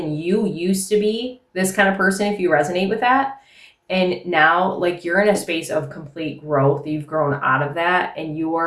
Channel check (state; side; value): identical; both; correlation 1.00